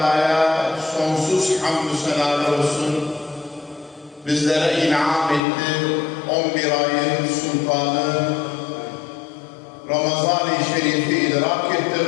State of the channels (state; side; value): drops out; right; at 5.4 s